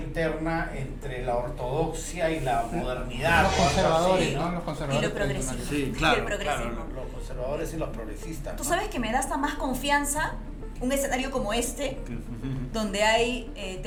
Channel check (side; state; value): both; identical; correlation 1.00